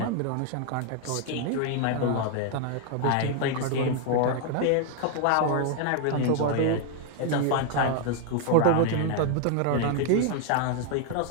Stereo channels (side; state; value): both; different; correlation 0.00